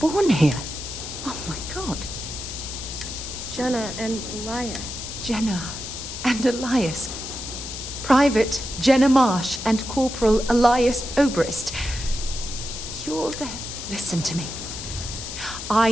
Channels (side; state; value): left; noise; hiss, 8 dB below the sound